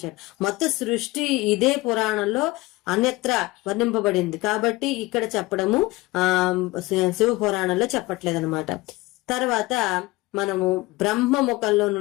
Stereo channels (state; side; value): quieter; right; 20.7 dB